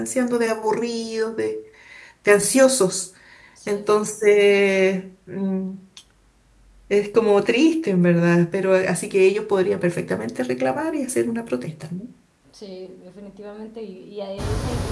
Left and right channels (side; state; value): both; identical; correlation 1.00